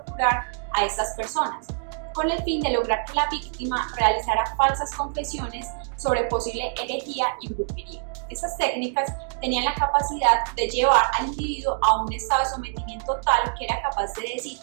a estas personas, con el fin de lograr que la víctima realizara falsas confesiones sobre posible herejía y brujería. Estas técnicas tenían la capacidad de llevar al individuo a un estado de sometimiento tal que era capaz de decir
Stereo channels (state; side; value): silent; left; digital silence